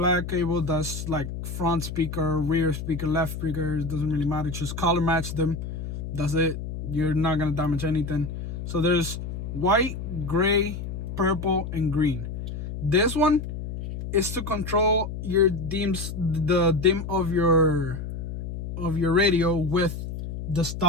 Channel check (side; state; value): left; noise; hum, 7 dB below the sound